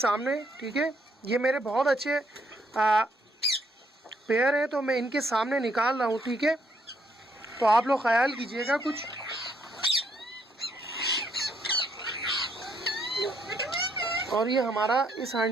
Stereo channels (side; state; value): both; normal; correlation 0.72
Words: ठीक है, ये मेरे बहुत अच्छे पेयर हैं, तो मैं इनके सामने निकाल रहा हूँ, ठीक है। तो आप लोग ख्याल कीजिएगा कुछ। और ये हमारा इस